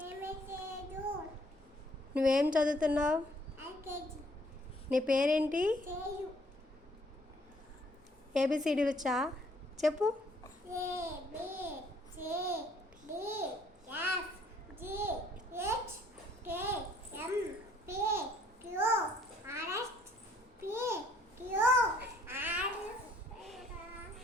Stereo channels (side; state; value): both; normal; correlation 0.63